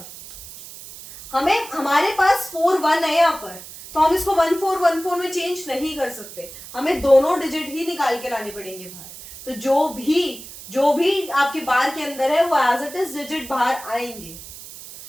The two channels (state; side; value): noise; right; hiss, 15 dB below the sound